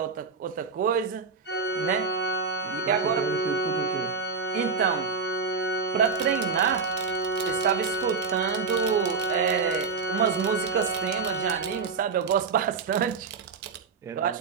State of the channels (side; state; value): left; quieter; 5.1 dB